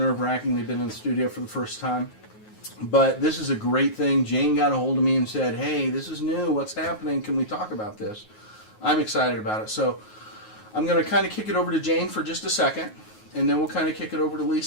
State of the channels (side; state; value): right; late; 9.4 ms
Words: They've been in the studio for the first time. But this is a great thing. Jane got a hold of me and said, hey, this is new. What's happening? Can we talk about this? I'm excited about it. So, I'm going to kind of kick it over to Jane for just a second. And then we'll kind of kick it over to